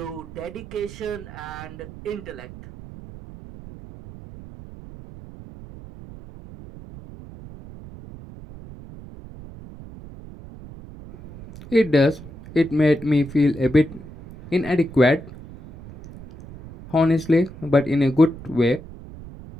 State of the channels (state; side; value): noise; right; rumble, 16 dB below the sound